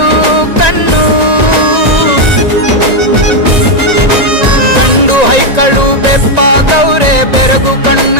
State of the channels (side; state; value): left; late; 1.9 ms